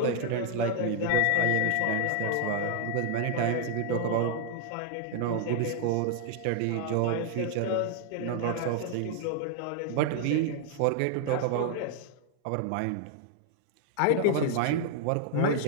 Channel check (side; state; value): both; different; correlation 0.00